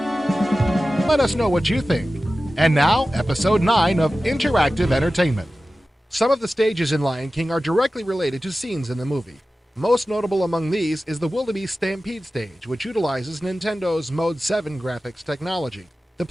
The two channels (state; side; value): normal; both; correlation 0.95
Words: Let us know what you think. And now, Episode 9 of Interactive Entertainment. Some of the stages in Lion King are directly related to scenes in the movie. Most notable among these is the Wildebeest Stampede stage, which utilizes Nintendo's Mode 7 graphics technology. The